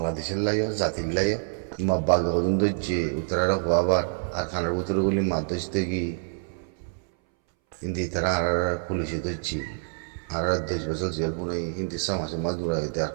লাইও জাতির লাইও মাব্বাগ হদুন দইছে উত্তরারা হওয়াবার আর খানার উত্তরগুলি মাদ্রাস থেকে হিন্দি তারা আর পুলিশে ধরছি আর 10 বছর জেল পুনে হিন্দি সমাজে মাদুরা হইতে আর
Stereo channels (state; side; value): silent; left; 60 dB below the other